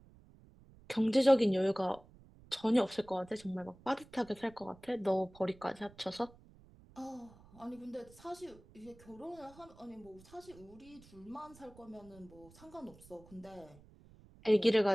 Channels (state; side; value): noise; right; rumble, 23 dB below the sound